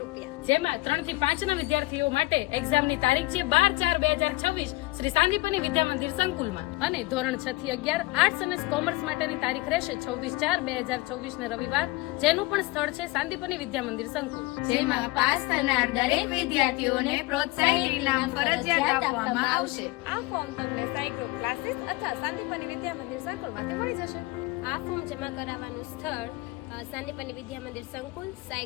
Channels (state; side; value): quieter; right; 21.4 dB